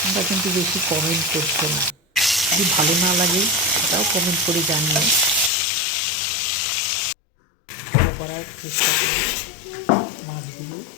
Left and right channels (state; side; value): drops out; right; at 5.5 s